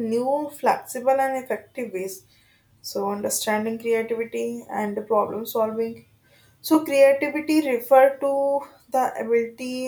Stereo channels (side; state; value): both; identical; correlation 1.00